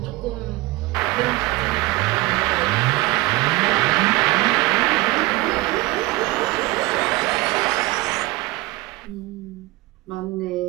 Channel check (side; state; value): left; quieter; 20.6 dB